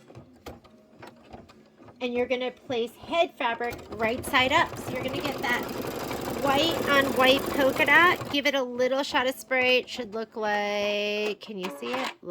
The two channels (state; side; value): identical; both; correlation 1.00